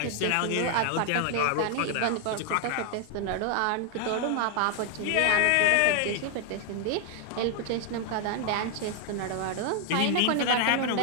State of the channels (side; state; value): both; different; correlation 0.00